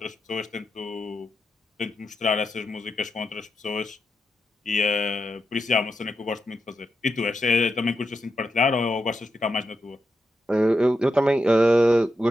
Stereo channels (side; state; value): both; normal; correlation 0.86